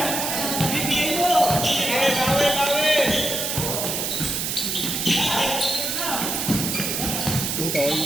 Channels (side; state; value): right; noise; hiss, 1 dB below the sound